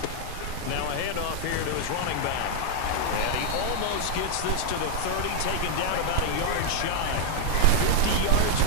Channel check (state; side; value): different; both; correlation 0.00